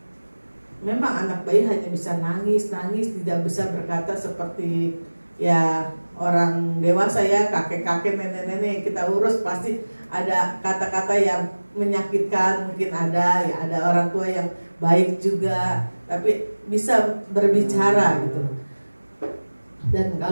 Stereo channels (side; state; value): both; inverted; correlation -1.00